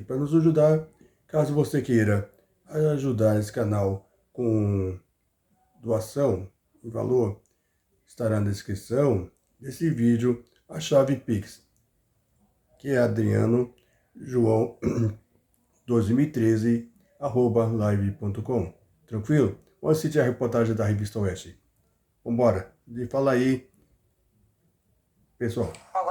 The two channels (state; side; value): identical; both; correlation 1.00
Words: para nos ajudar. Caso você queira ajudar esse canal com doação em valor, estará na descrição desse vídeo a chave Pix, que é Adriano João 2013 live.com. Tranquilo? Vamos assistir a reportagem da Revista Oeste. Vambora, fala aí, pessoal.